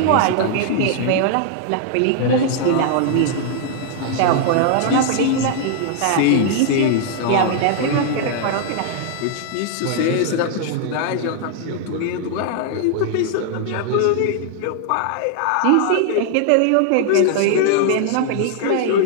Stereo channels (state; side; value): different; both; correlation 0.00